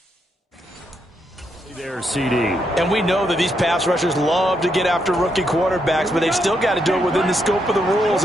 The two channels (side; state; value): both; normal; correlation 0.79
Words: There, CD. And we know that these pass rushers love to get after rookie quarterbacks, but they've still got to do it within the scope of the rules.